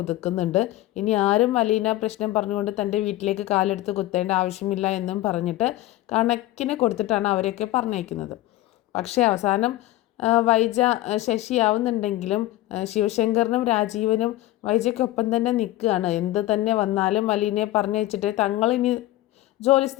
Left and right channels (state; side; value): quieter; right; 16.1 dB